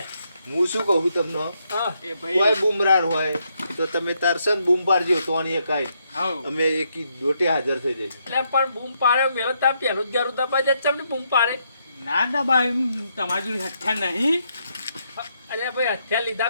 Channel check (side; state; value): both; inverted; correlation -0.77